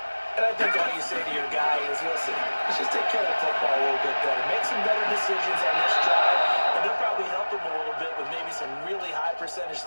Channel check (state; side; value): inverted; both; correlation -1.00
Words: And I think all you say to your guy is, listen, let's just take care of the football a little bit better. Make some better decisions on this drive, and they'll probably help him a little bit with maybe some really high percentage